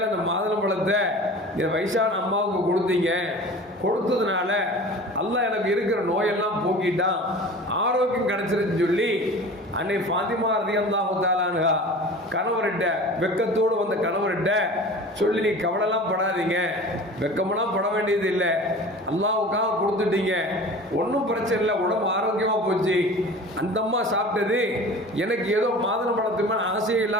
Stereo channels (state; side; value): normal; both; correlation 0.39